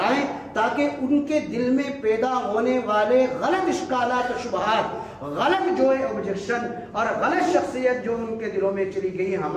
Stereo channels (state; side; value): identical; both; correlation 1.00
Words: تاکہ ان کے دل میں پیدا ہونے والے غلط اشکالات و شبہات، غلط جو ہے آبجیکشن اور غلط شخصیت جو ان کے دلوں میں چلی گئی